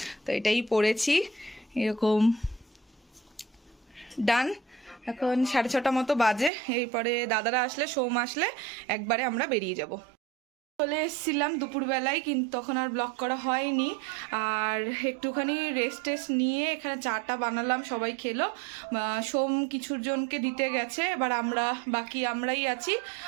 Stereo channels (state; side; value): drops out; left; at 6.5 s